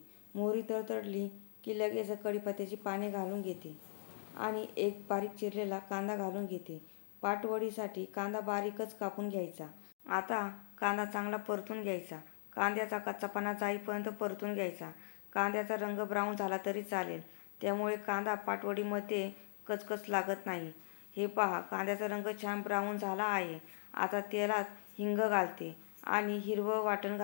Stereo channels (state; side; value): silent; right; digital silence